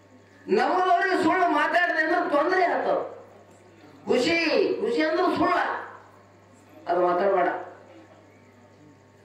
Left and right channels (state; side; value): identical; both; correlation 1.00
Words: ನಮ್ಮದವ್ರಿಗೆ ಸುಳ್ಳು ಮಾತಾಡಿದೆ ಅಂದ್ರೆ ತೊಂದರೆ ಆಗ್ತಾವ.